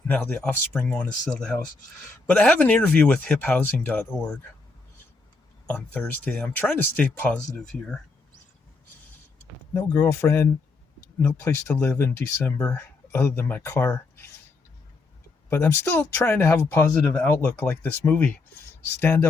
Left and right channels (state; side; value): quieter; right; 3.9 dB